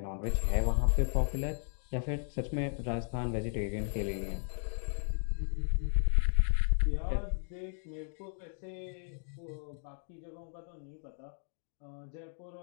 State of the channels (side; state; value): right; silent; 55 dB below the other